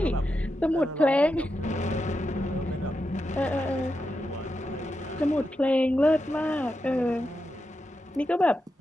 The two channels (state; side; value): normal; both; correlation 0.87